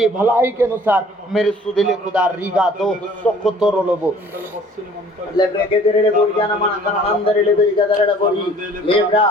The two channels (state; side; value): normal; both; correlation 0.53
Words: भलाई के अनुसार मेरे सुदिले खुदा रीगा दो सुख तो रोलोबो लेब्रे के तेरे बोरिया न मन कर अंदर ले बेरी गदर बोरी लेब्रा